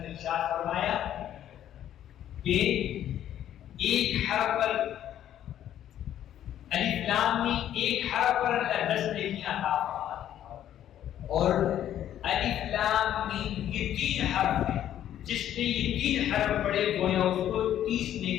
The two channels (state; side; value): quieter; right; 11.2 dB